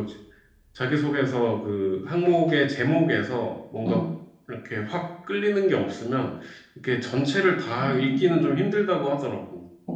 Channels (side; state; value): both; identical; correlation 1.00